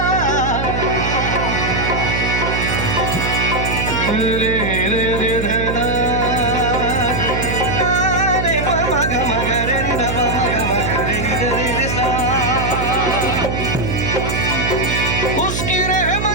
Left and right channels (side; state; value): right; noise; hum, 2 dB below the sound